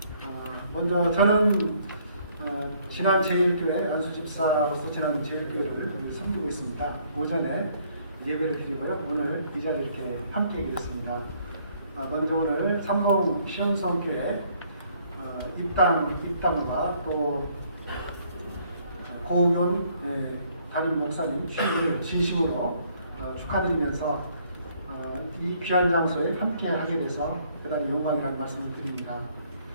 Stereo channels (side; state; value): both; inverted; correlation -0.65